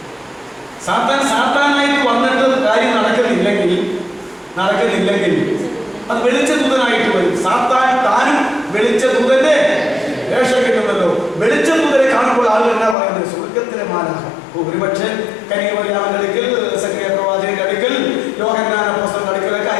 സാത്താനായിട്ട് വന്നിട്ട് കാര്യം നടക്കുന്നില്ലെങ്കിൽ അത് വെളിച്ചദൂതനായിട്ട് വരും. താനും വെളിച്ചദൂതന്റെ വേഷം കിട്ടുമല്ലോ. വെളിച്ചദൂതനെ കാണുമ്പോൾ ആളുകൾ എന്നാ പറയുന്നത്? സ്വർഗത്തിലെ മാലാഖ. ഒരുപക്ഷെ കന്യകമറിയാമിന്റെ അടുക്കൽ, സക്കറിയ പ്രവാചകന്റെ അടുക്കൽ, യോഹന്നാൻ അപ്പോസ്തലന്റെ അടുക്കലൊക്കെ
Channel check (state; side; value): drops out; right; at 13.0 s